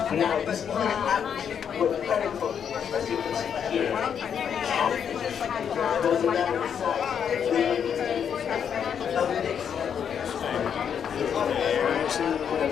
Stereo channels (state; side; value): quieter; right; 7.9 dB